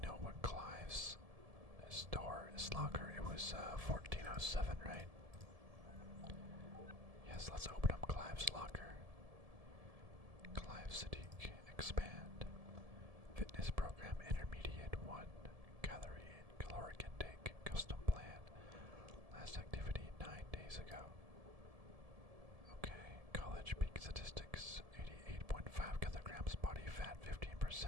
what Clive's his locker. It was 1407, right? Yes, let's open up Clive's locker. Clive Sadiq, expand. Fitness program intermediate 1. Caloric intake, custom plan. Last activity 9 days ago. Okay, college peak statistics 88.5 kilograms, body fat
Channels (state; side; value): late; left; 1.7 ms